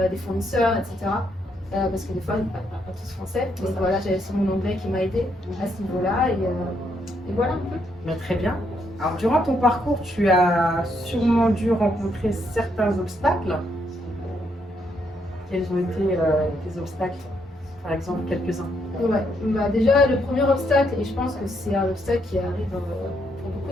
fournisseurs, etc. Parce que des fois, ils ne parlent pas tous français. Donc voilà, j'avais aussi mon anglais qui m'a aidé à ce niveau-là. Et voilà un peu. Très bien. Alors, durant ton parcours, tu as sûrement dû rencontrer certains obstacles. Quels ont été tes obstacles? Par exemple, quelques-uns. Ouais. Déjà, le premier obstacle, et je pense que c'est un obstacle qui arrive pour beaucoup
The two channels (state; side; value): normal; both; correlation 0.75